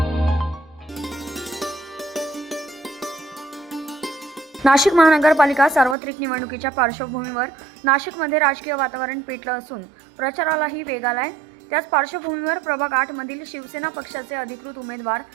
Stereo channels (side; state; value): left; drops out; at 6.0 s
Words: नाशिक महानगरपालिका सार्वत्रिक निवडणुकीच्या पार्श्वभूमीवर नाशिकमध्ये राजकीय वातावरण पेटलं असून प्रचारालाही वेग आलाय. त्याच पार्श्वभूमीवर प्रभाग 8 मधील शिवसेना पक्षाचे अधिकृत उमेदवार